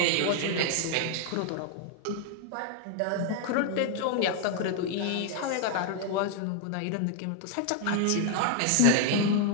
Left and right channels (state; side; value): different; both; correlation 0.00